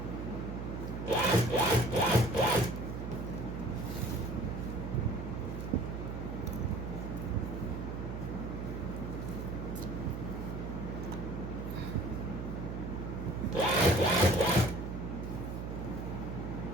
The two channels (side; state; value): right; noise; hum, 5 dB below the sound